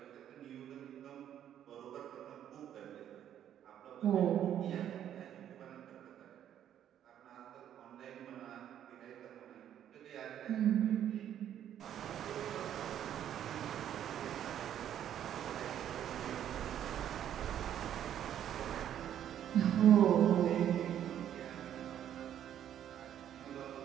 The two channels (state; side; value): quieter; left; 10.4 dB